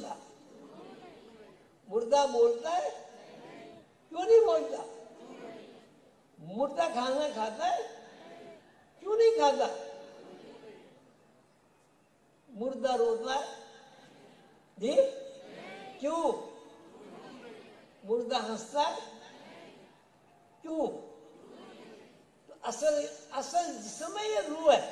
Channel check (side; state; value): both; identical; correlation 1.00